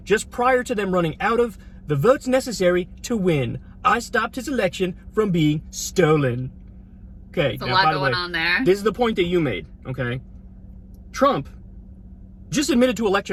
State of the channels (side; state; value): both; identical; correlation 1.00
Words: just prior to them running out of the votes necessary to win. I stopped his election from being stolen. Okay, there's a lot going on there. This is the point that you made, okay? Trump just admitted to